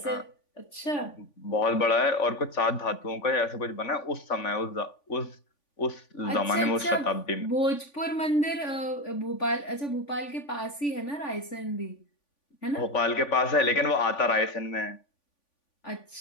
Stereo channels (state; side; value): late; right; 3.5 ms